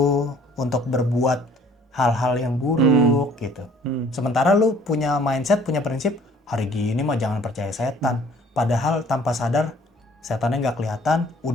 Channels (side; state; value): both; normal; correlation 0.56